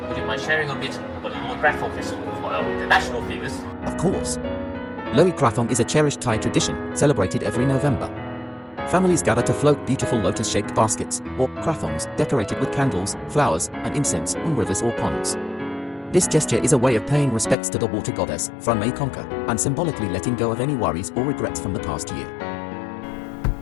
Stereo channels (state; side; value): drops out; right; at 17.6 s